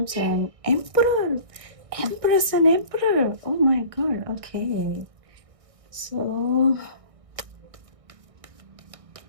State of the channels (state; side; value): late; left; 1.6 ms